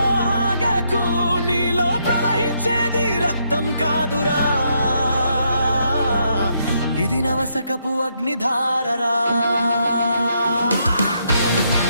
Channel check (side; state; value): both; inverted; correlation -0.76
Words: ఆగకు, నీలో ప్రవహించేది రక్తం కాదురా, ఇది నవశకపు అగ్నిధారరా.